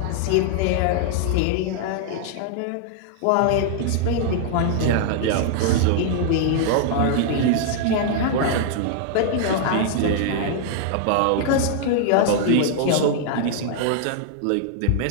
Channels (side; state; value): both; different; correlation -0.01